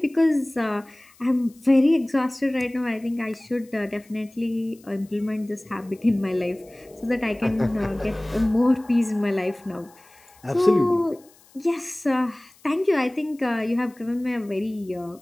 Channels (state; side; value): noise; left; hiss, 28 dB below the sound